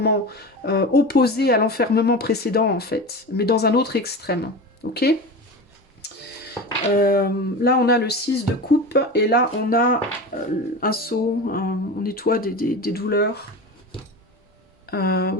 opposé à l'enfermement précédent en fait, mais dans un autre extrême. Ok. Là, on a le 6 de coupe et là, on a un seau, on nettoie des douleurs.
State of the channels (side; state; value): both; normal; correlation 0.28